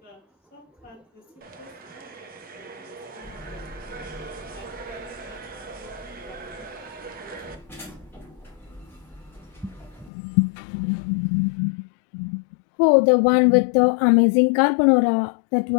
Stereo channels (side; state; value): right; drops out; at 10.1 s